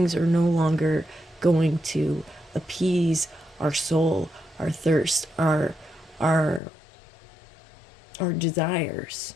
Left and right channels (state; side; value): drops out; right; at 6.6 s